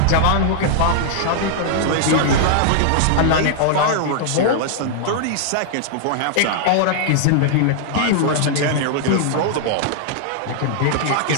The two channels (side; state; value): both; different; correlation -0.01